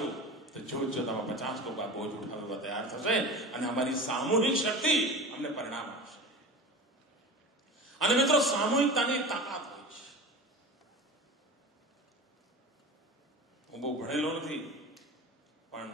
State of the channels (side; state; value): both; normal; correlation 0.32